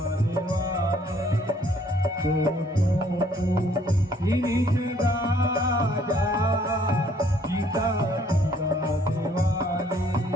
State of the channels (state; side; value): normal; both; correlation 0.63